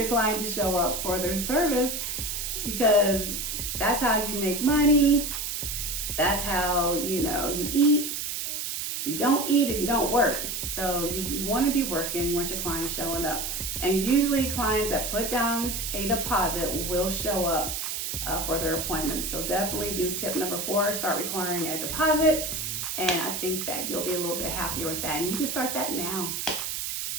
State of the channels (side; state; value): right; noise; hiss, 3 dB below the sound